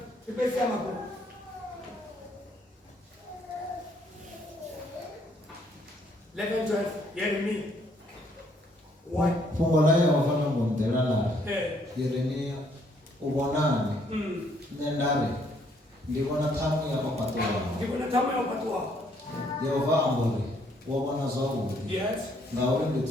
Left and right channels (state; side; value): normal; both; correlation 0.67